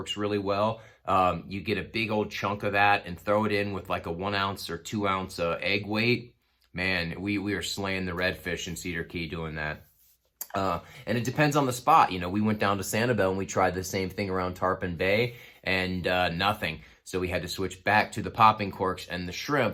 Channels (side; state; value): both; identical; correlation 1.00